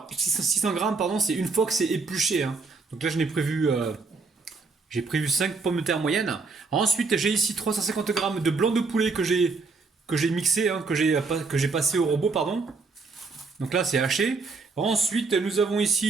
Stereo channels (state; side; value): quieter; left; 4.2 dB